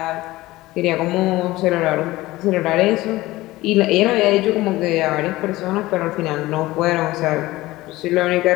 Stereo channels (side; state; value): right; quieter; 18.3 dB